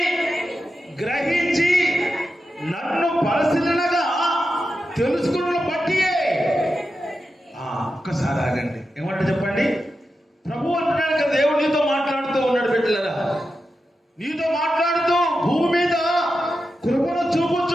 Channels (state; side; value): normal; both; correlation 0.90